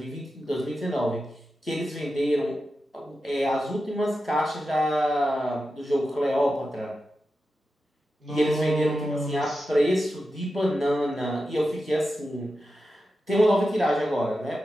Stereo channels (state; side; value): normal; both; correlation 0.91